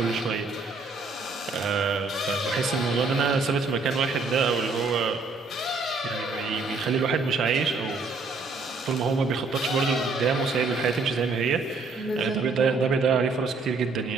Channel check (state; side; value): quieter; left; 3.9 dB